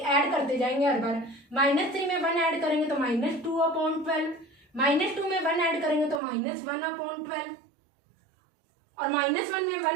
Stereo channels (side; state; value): left; drops out; at 6.2 s